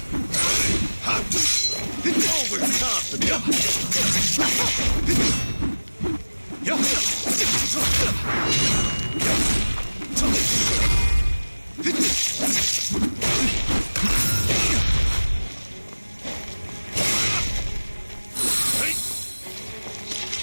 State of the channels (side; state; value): both; inverted; correlation -1.00